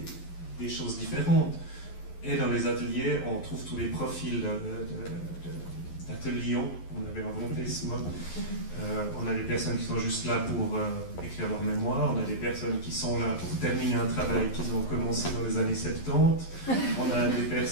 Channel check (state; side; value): late; right; 11 ms